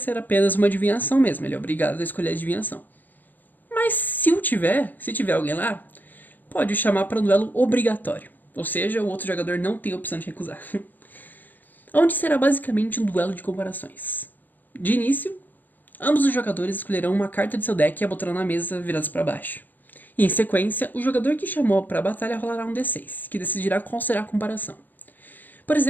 apenas uma adivinhação mesmo, ele é obrigado a escolher a adivinhação. Mas se tiver alguém lá, pode chamar para um duelo obrigatório. Ou seja, o outro jogador não tem a opção de recusar. Onde será basicamente um duelo de comparações. De início, ambos os jogadores escolherão uma carta de seu deck e a botarão na mesa viradas para baixo. E em sequência, o jogador que chamou para a batalha rolará um D6, que decidirá qual será a comparação. Por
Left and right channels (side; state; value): right; late; 0.086 ms